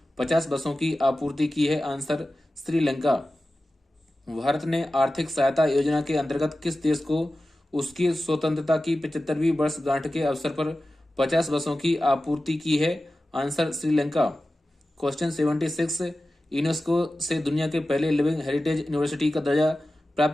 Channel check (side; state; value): both; normal; correlation 0.94